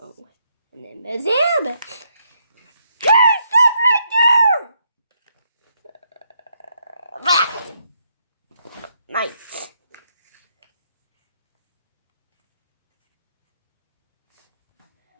And then there's him. Hey, stop right there! Nice.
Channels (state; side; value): inverted; both; correlation -0.76